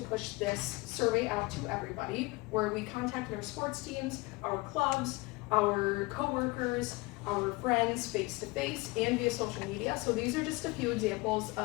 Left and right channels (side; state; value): right; quieter; 24.1 dB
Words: this survey out to everybody were we contacted our sports teams, our clubs, our coworkers, our friends face-to-face and via social media. So these are just a few examples